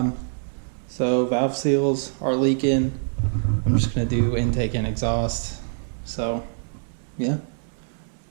So valve seals are leaking. I'm just going to do intake and exhaust. So yeah,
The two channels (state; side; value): silent; left; 61 dB below the other